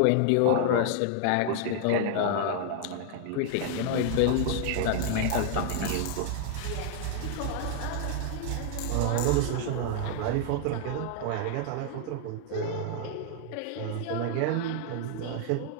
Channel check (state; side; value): different; both; correlation 0.00